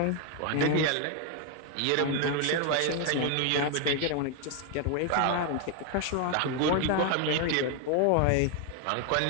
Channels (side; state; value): both; different; correlation 0.01